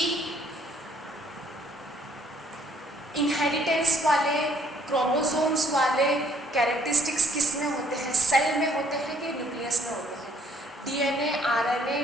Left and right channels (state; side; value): normal; both; correlation 0.63